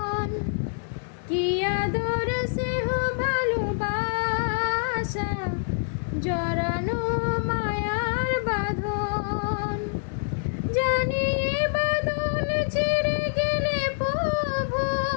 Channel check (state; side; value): silent; right; digital silence